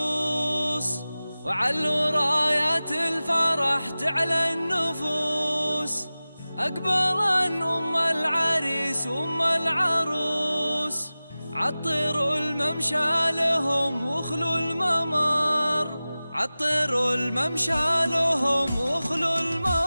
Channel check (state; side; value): inverted; both; correlation -0.97